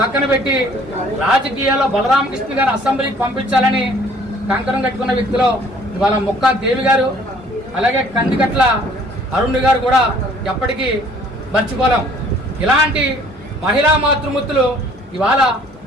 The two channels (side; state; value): both; normal; correlation 0.57